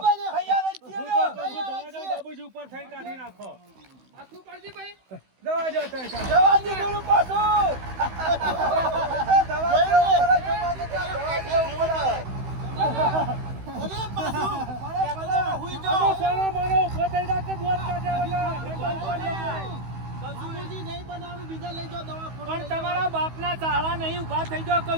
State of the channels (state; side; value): late; left; 16 ms